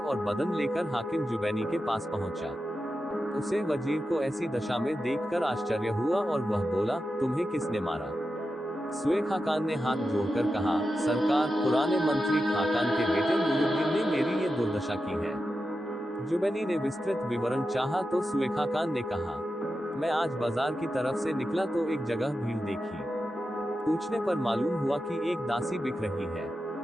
बदन लेकर हाकिम जुबैनी के पास पहुंचा। उसे वजीर को ऐसी दशा में देखकर आश्चर्य हुआ और वह बोला, तुम्हें किसने मारा? सुए खाकान ने हाथ जोड़कर कहा, सरकार, पुराने मंत्री खाकान के बेटे नूरुद्दीन ने मेरी ये दुर्दशा की है। जुबैनी ने विस्तृत विवरण चाहा तो सुए खाकान ने कहा, मैं आज बाजार की तरफ से निकला तो एक जगह भीड़ देखी। पूछने पर मालूम हुआ कि एक दासी बिक रही है।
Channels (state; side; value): normal; both; correlation 0.90